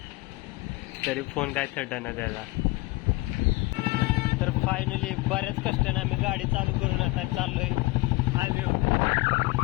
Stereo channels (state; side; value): quieter; right; 22.2 dB